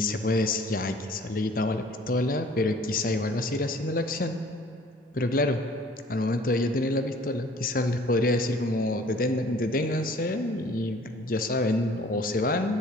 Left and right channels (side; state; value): both; normal; correlation 0.52